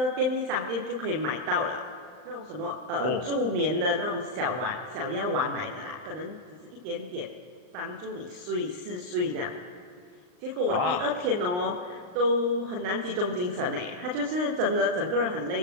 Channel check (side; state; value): left; late; 39 ms